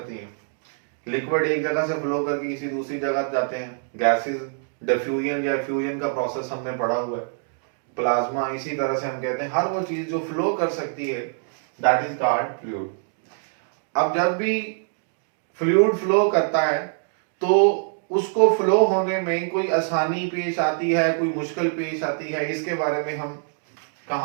हैं. लिक्विड एक जगह से फ्लो करके किसी दूसरी जगह जाते हैं. गैसेस डिफ्यूजन या फ्यूजन का प्रोसेस हमने पढ़ा हुआ है. प्लाज्मा इसी तरह से हम कहते हैं हर वो चीज जो फ्लो कर सकती है, दैट इज कॉल्ड फ्लूइड. अब जब भी फ्लूइड फ्लो करता है तो उसको फ्लो होने में कोई आसानी पेश आती है, कोई मुश्किल पेश आती है, इसके बारे में हम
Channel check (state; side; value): silent; left; digital silence